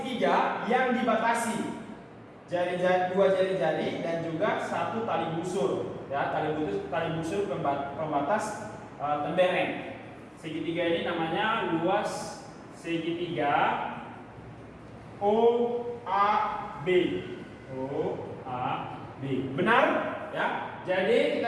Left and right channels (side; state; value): both; identical; correlation 1.00